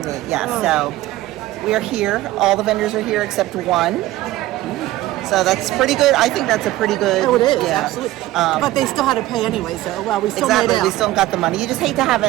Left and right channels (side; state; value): left; quieter; 16.3 dB